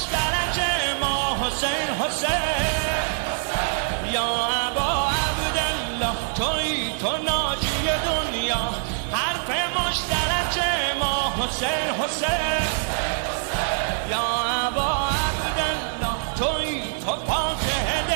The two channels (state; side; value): silent; left; 62 dB below the other